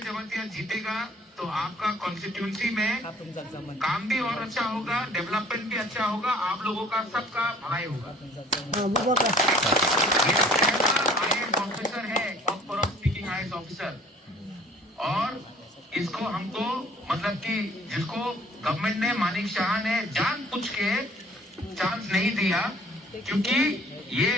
जीतेगा तो आपका कॉन्स्टिट्यूंसी में काम भी और अच्छा होगा, डेवलपमेंट भी अच्छा होगा, आप लोगों का सबका भलाई होगा। IAS ऑफिसर है, स्पीकिंग IAS ऑफिसर, और इसको हमको मतलब कि जिसको गवर्नमेंट ने, मानिक शाह ने जानबूझ के चांस नहीं दिया, क्योंकि ये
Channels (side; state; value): both; normal; correlation 0.53